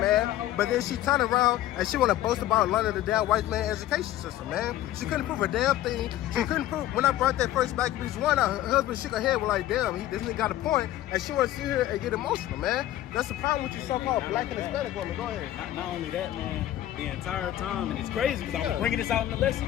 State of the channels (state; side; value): quieter; right; 13.7 dB